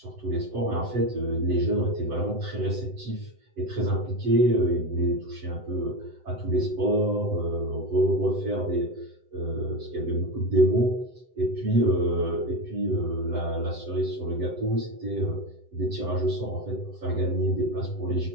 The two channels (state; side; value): late; left; 7.9 ms